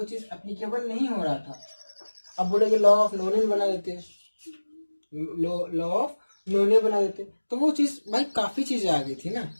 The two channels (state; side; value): inverted; both; correlation -1.00